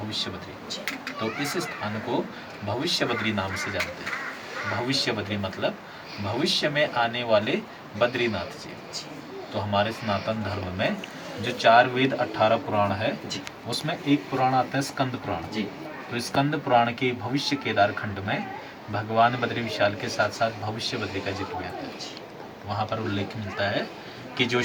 बद्री। तो इस स्थान को भविष्य बद्री नाम से जानते हैं। भविष्य बद्री मतलब भविष्य में आने वाले बद्रीनाथ जी। तो हमारे सनातन धर्म में जो 4 वेद 18 पुराण है, उसमें एक पुराण आता है स्कंद पुराण जी। तो स्कंद पुराण के भविष्य केदार खंड में भगवान बद्री विशाल के साथ साथ भविष्य बद्री का जिक्र भी आता है। वहाँ पर उल्लेख मिलता है कि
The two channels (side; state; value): both; identical; correlation 1.00